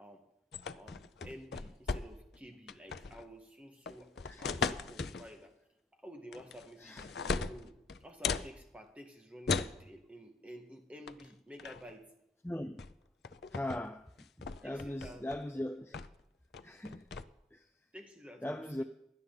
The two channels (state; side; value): quieter; right; 3.2 dB